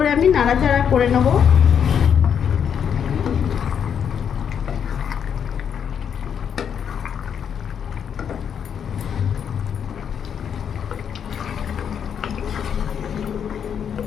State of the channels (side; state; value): right; quieter; 7.9 dB